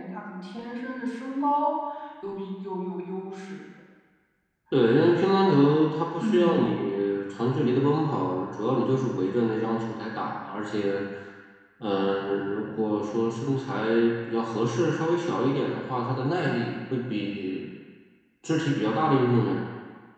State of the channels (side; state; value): both; identical; correlation 1.00